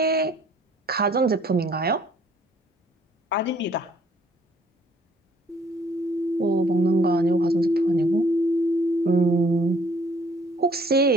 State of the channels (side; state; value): both; normal; correlation 0.61